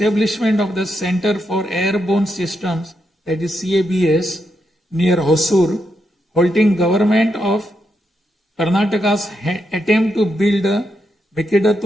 of the Center for Airborne Systems, that is CABS, near Hosur, halting government of Karnataka's attempt to build a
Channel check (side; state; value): both; normal; correlation 0.83